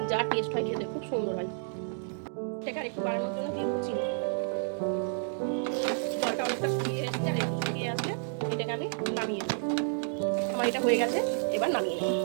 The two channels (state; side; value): silent; left; digital silence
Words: যা টেস্ট হয় খেতে খুব সুন্দর হয়। এটাকে আর একটু বাড়ানোর জন্য দিয়ে দেবো চিনি। জলটা অনেকটা শুকিয়ে এসেছে, আর একটু শুকিয়ে আসলে এটাকে আমি নামিয়ে দেবো। আমার এটা হয়ে গেছে, এবার নামিয়ে নেব।